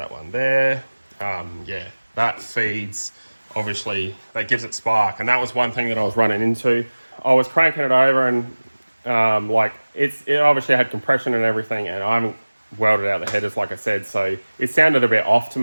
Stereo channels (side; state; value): both; inverted; correlation -1.00